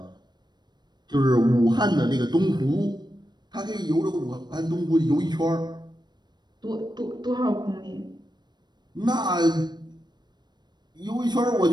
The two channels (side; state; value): left; late; 0.21 ms